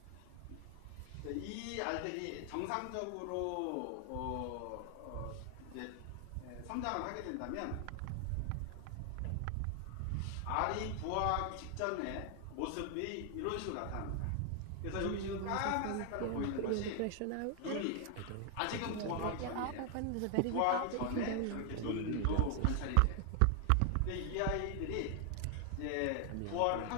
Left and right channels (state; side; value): different; both; correlation 0.00